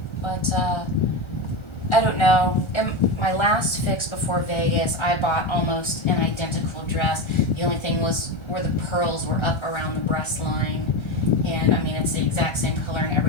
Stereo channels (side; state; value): right; late; 1.4 ms